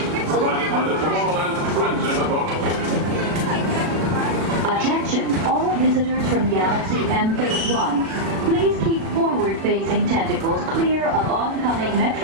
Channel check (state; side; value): late; left; 36 ms